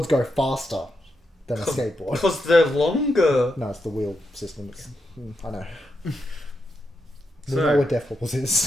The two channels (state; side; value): normal; both; correlation 0.84